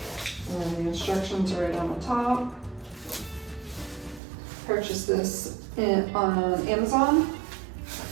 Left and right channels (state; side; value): drops out; left; at 4.2 s